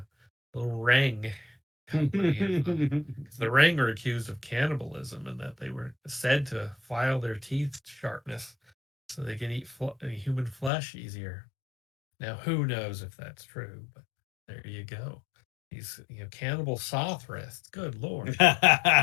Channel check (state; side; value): drops out; right; at 10.7 s